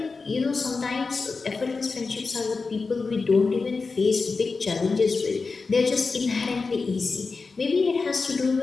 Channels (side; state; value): right; quieter; 4.3 dB